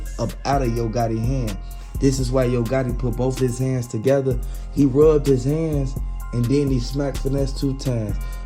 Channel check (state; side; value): identical; both; correlation 1.00